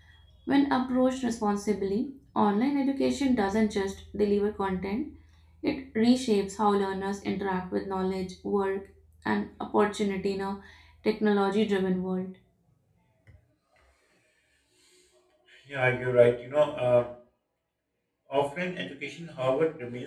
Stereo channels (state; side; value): identical; both; correlation 1.00